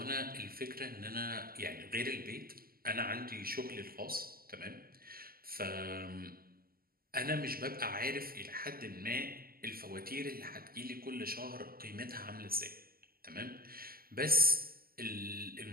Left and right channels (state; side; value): late; left; 0.43 ms